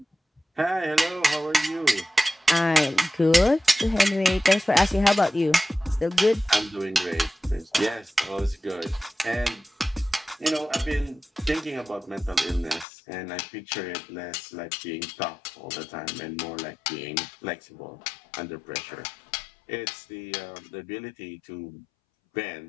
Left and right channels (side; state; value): right; drops out; at 12.9 s